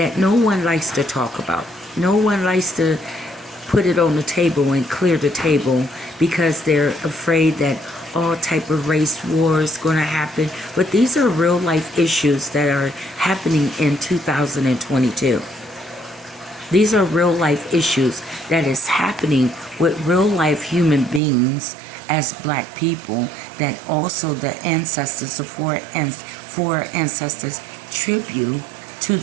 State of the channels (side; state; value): left; drops out; at 21.2 s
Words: no one likes to talk about. No one likes to put it on the table and clear the table because they're afraid that all type of race wars going to happen. But these are real life issues that are happening in 2022. These are real life issues that is happening with real life human beings as black people, that also the ancestors, the four ancestors tribute to